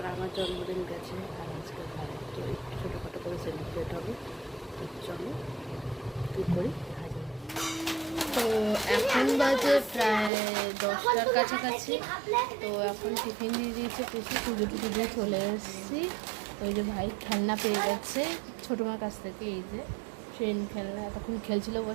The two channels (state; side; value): drops out; left; at 10.3 s